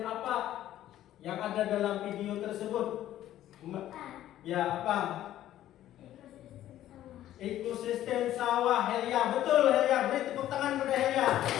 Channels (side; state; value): right; quieter; 12.9 dB